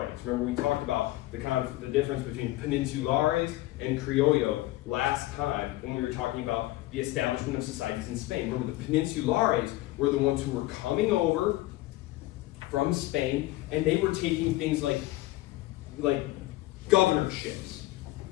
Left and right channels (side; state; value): right; quieter; 17.6 dB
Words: Remember, we talked about the difference between peninsulares and criollo last time when we were talking about the establishment of societies in Spain. Remember, the peninsulares were the ones who were coming over from Spain, and they were taking things like governorships.